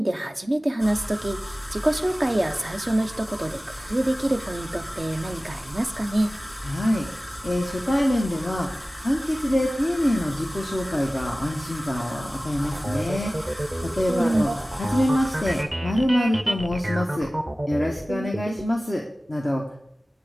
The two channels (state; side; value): normal; both; correlation 0.97